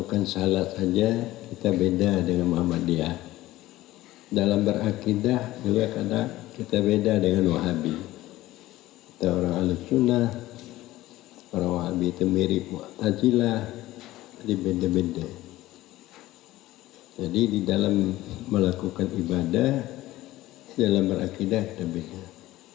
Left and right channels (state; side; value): quieter; right; 16.6 dB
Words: salat saja kita beda dengan Muhammadiyah. Dalam berakidah juga kadang kita beda dengan Wahabi. Kita orang Ahlussunnah, orang Wahabi itu mirip Mu'tazilah, jadi beda-beda. Jadi di dalam melakukan ibadah, dalam berakidah kita beda.